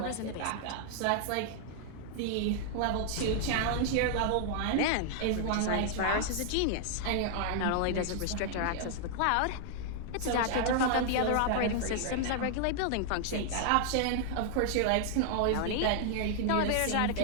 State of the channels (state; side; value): different; both; correlation 0.00